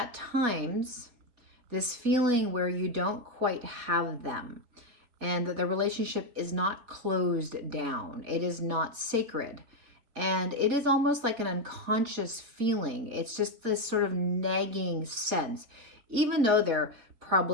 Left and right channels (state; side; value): late; left; 4.2 ms